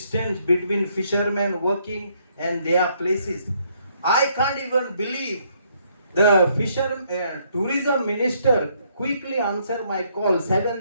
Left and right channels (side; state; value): both; inverted; correlation -0.70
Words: between fishermen working and their places. I can't even believe the tourism minister quickly answered my call